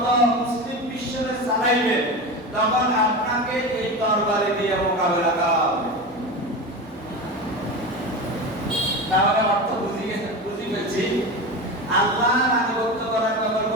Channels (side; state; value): both; normal; correlation 0.25